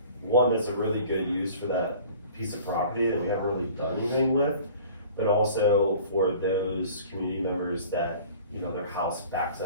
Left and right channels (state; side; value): inverted; both; correlation -0.46